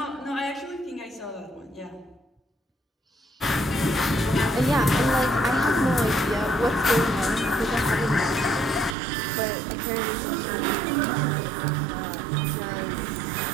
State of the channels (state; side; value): drops out; left; at 9.0 s